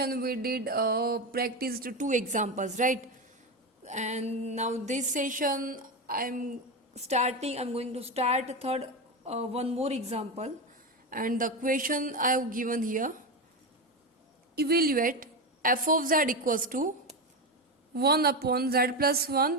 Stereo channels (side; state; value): both; normal; correlation 0.16